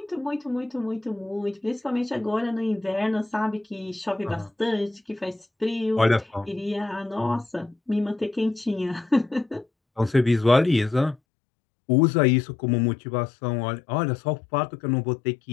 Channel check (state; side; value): drops out; right; at 11.2 s